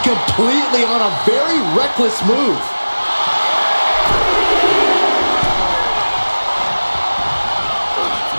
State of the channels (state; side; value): inverted; both; correlation -1.00